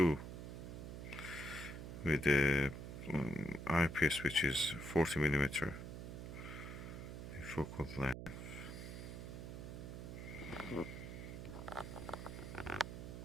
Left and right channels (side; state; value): right; noise; hum, 8 dB below the sound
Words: with the eyepiece, which is 40 millimeter focal length.